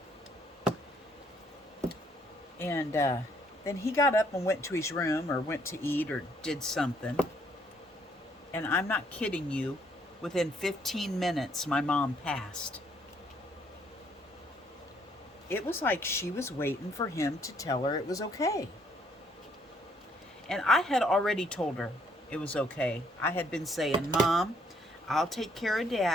And then he got up and went to his room, or went to eat, or did something. And I'm not kidding you, within 15 minutes, my mom passed. It was like she was waiting for him to tell her it was okay. And I had already told her it was okay. I had been saying, "Mom, I'll take care of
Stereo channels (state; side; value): normal; both; correlation 0.68